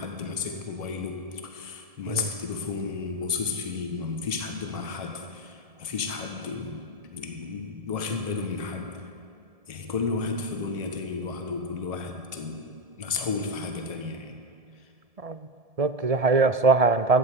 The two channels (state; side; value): late; left; 1.7 ms